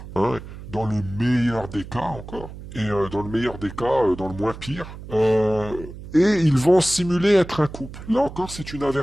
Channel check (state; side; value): noise; right; hum, 13 dB below the sound